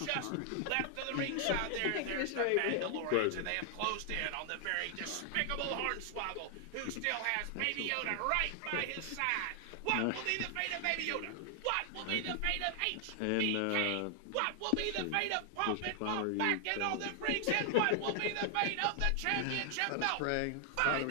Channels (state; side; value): different; both; correlation 0.00